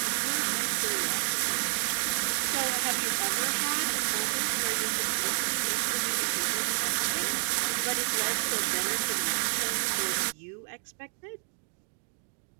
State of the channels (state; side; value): silent; left; digital silence